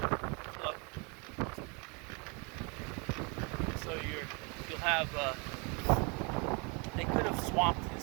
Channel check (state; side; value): quieter; left; 31.4 dB